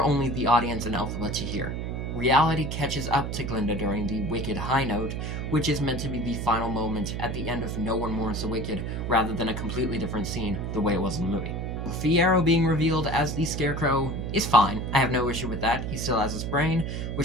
only the audience and Elphaba to hear. Reality catches up to Glinda during the Wicked high note, which is meant to be the final moment at the end of No One Mourns the Wicked, rather than a completely different scene the way it was in the movie. Fiyero being revealed as the Scarecrow is fine. I have no issue with that. He still has his brain,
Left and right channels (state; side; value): noise; right; hum, 4 dB below the sound